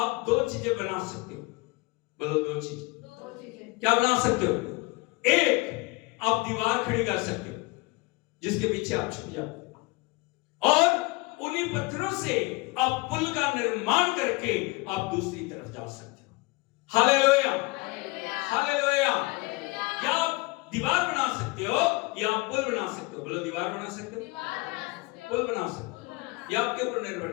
दो चीजें बना सकते हो। बोलो दो चीजें। क्या बना सकते हो? एक, आप दीवार खड़ी कर सकते हो जिसके पीछे आप छुप जाओ, और उन्हीं पत्थरों से आप पुल का निर्माण करके आप दूसरी तरफ जा सकते हो। Hallelujah, hallelujah. या आप दीवार बना सकते हो या आप पुल बना सकते हो। बोलो दीवार बना सकते हो, पुल बना सकते हो, ये आपके ऊपर निर्भर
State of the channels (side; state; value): right; quieter; 24.4 dB